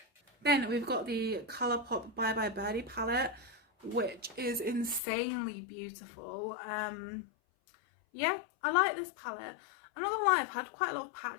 Then we've got the Colourpop Bye Bye Birdie palette, which is insanely beautiful. Yeah, I like this palette. I'm not going to lie, I've had quite a lot of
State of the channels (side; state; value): right; drops out; at 5.0 s